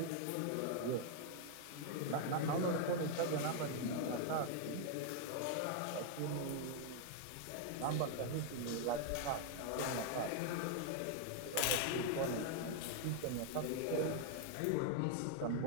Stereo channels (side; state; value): both; different; correlation 0.00